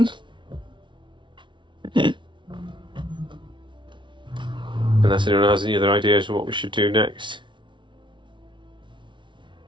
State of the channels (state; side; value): late; left; 0.24 ms